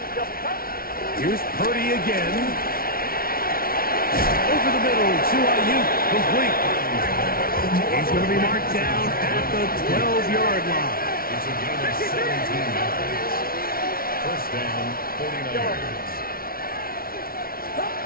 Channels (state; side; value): late; right; 0.43 ms